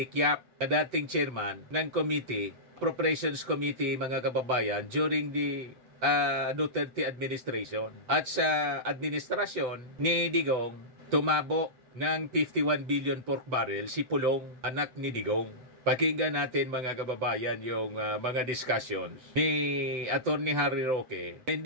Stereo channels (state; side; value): late; left; 7.8 ms